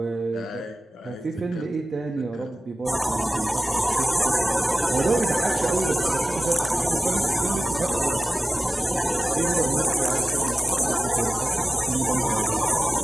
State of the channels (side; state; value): both; normal; correlation 0.96